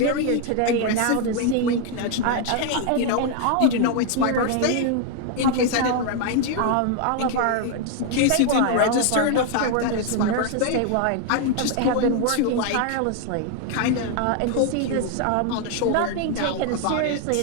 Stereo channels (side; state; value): both; different; correlation 0.00